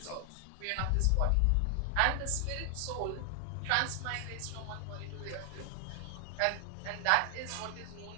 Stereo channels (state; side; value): different; both; correlation 0.00